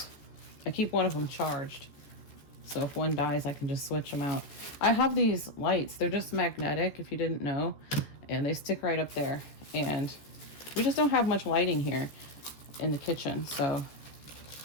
I keep one of them charged, so if one dies, I can just switch them out. I have these lights. They're just magnetic, if you didn't know, and they stick right up there. And we just don't have much lighting here in the kitchen, so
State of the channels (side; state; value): right; late; 14 ms